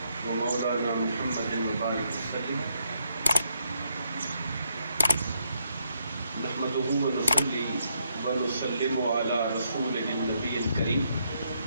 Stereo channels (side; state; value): both; inverted; correlation -0.77